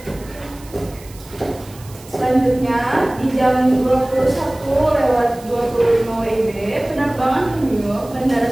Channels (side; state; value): right; noise; hiss, 22 dB below the sound